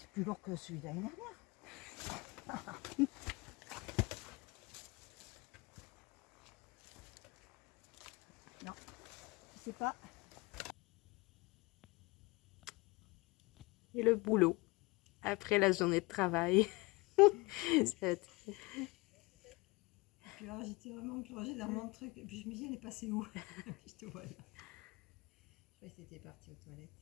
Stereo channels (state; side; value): quieter; right; 24.4 dB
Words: plus lourd que celui d'année dernière. Non, je sais pas. Et le boulot, après la journée de travail. Cette- Puis alors j'étais vraiment plongée dans mon truc. Et puis je me dis, elle est passée où? Puis je te vois là. Je croyais que c'était parti aux toilettes.